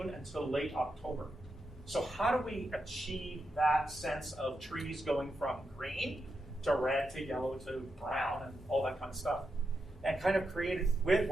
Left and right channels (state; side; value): normal; both; correlation 0.86